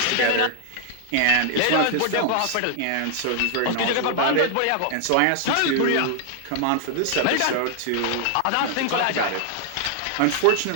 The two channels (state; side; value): different; both; correlation 0.00